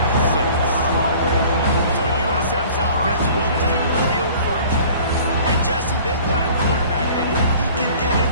26. So USF's offense will take the field first. And Jesse, they've got a quarterback that if he can get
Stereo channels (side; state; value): both; inverted; correlation -0.48